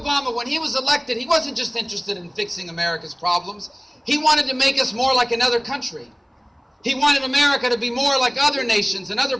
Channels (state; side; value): identical; both; correlation 1.00